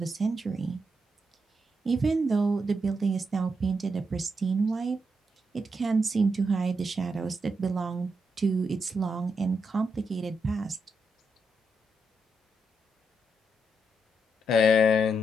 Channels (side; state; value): both; normal; correlation 0.82